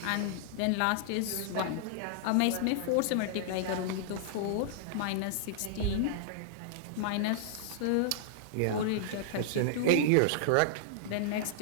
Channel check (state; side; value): different; both; correlation -0.01